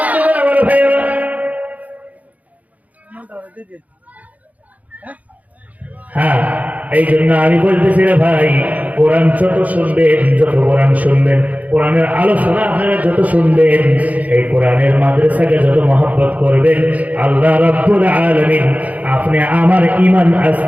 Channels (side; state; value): left; late; 0.074 ms